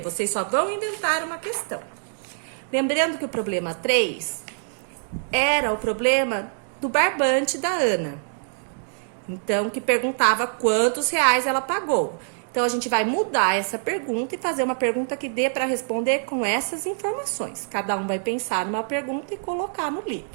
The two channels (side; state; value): left; silent; 62 dB below the other